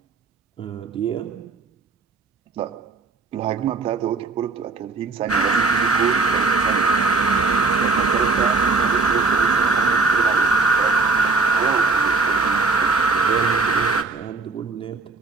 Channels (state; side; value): quieter; left; 4.0 dB